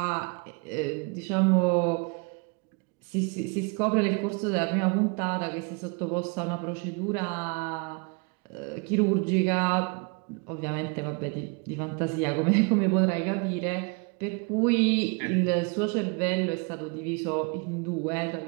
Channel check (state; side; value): quieter; left; 33.0 dB